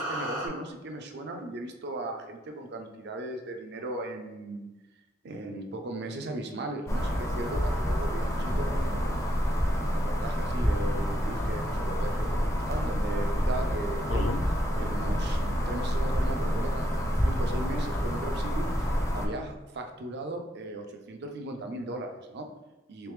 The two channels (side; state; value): both; normal; correlation 0.78